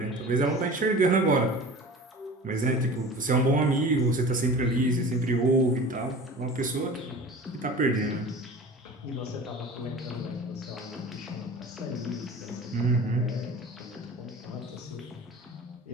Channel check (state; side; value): normal; both; correlation 0.38